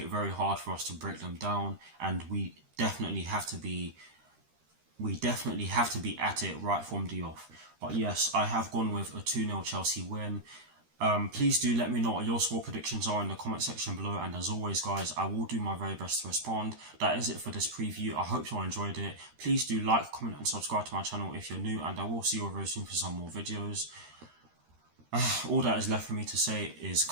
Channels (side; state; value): left; late; 13 ms